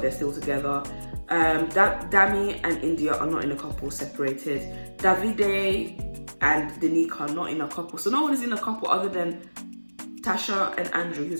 they're still together. Dami and Indiyah are not in a couple, separated. Davide and Danica are not in a couple. So no one is in a couple other than Tasha and Andrew,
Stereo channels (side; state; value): both; inverted; correlation -1.00